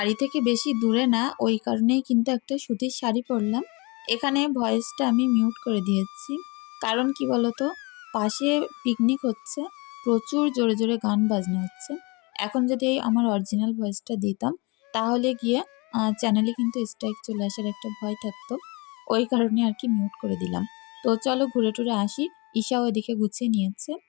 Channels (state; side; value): quieter; right; 27.7 dB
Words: থেকে বেশি দূরে না, ওই কারণেই কিন্তু একটা সুতির শাড়ি পরলাম। এখানে ভয়েসটা আমি মিউট করে দিয়েছি, কারণ কি বলতো, পাশে পিকনিক হচ্ছে, প্রচুর জোরে জোরে গান বাজনা হচ্ছে। এখন যদি এই আমার অরিজিনাল ভয়েসটা দিতাম, তাহলে গিয়ে চ্যানেলে কিন্তু স্ট্রাইক চলে আসার একটা ভয় থাকতো, ওই কারণে আর কি মিউট করে দিলাম। তো চলো ঘুরে টুরে আসি, ঈশাও এদিকে গুছিয়ে নিয়েছে।